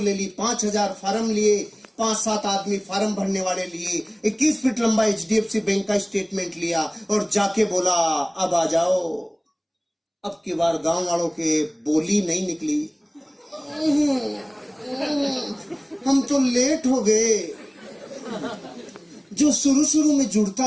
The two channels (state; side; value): identical; both; correlation 1.00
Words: ले ली, 5,000 फार्म लिए, 5-7 आदमी फार्म भरने वाले लिए, 21 फीट लंबा HDFC बैंक का स्टेटमेंट लिया और जाके बोला अब आ जाओ। अब की बार गांव वालों के बोली नहीं निकली, हम तो लेट हो गए। जो शुरू शुरू में जुड़ता